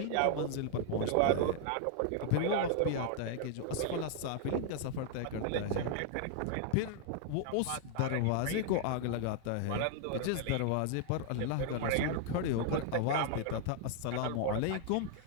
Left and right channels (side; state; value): both; different; correlation -0.01